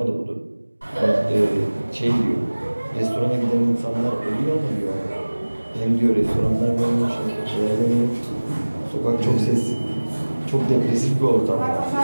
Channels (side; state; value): both; inverted; correlation -1.00